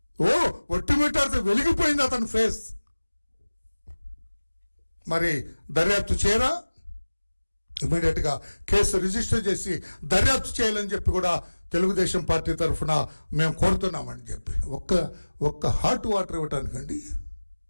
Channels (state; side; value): inverted; both; correlation -1.00